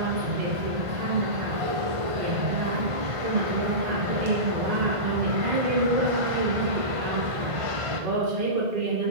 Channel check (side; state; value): left; late; 1.5 ms